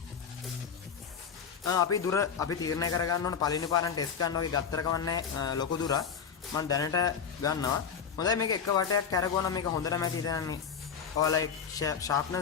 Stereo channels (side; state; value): right; quieter; 6.9 dB